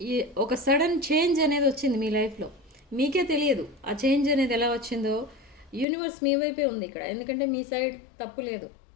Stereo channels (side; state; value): right; drops out; at 5.9 s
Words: ఈ ఒక సడన్ చేంజ్ అనేది వచ్చింది మీ లైఫ్లో. మీకే తెలియదు ఆ చేంజ్ అనేది ఎలా వచ్చిందో. యూనివర్స్ మీ వైపే ఉంది ఇక్కడ, ఎందుకంటే మీ సైడ్ తప్పు లేదు.